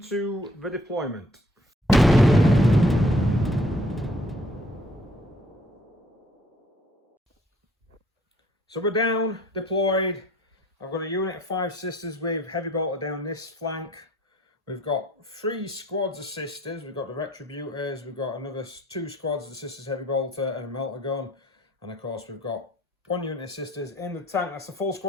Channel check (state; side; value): normal; both; correlation 0.59